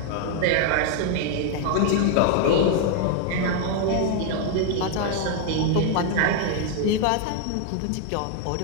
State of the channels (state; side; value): different; both; correlation 0.01